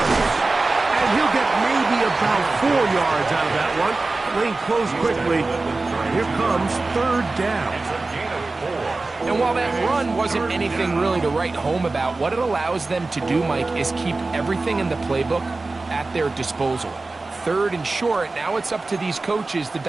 And he'll get maybe about 4 yards out of that one. Lane closed quickly. Here comes 3rd down. And while that run wasn't anything really to write home about, what it allows them to do, Mike, is keep everything in the playbook at their disposal. 3rd and short, now it's up to these coaches to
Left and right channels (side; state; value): left; quieter; 3.4 dB